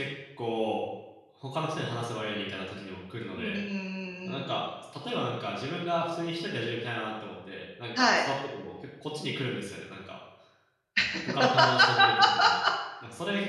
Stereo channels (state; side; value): identical; both; correlation 1.00